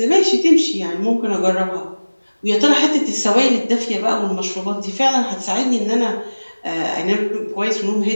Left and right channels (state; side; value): inverted; both; correlation -1.00